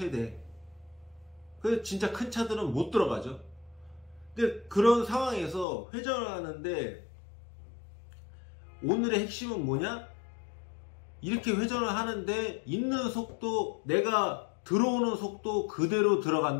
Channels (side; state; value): right; drops out; at 5.7 s